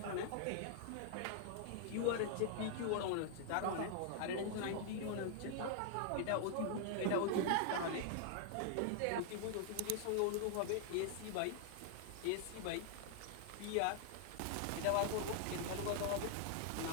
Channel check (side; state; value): both; different; correlation -0.01